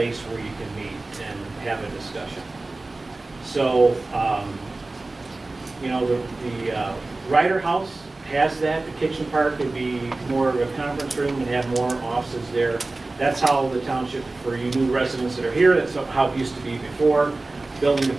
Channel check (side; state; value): left; quieter; 3.2 dB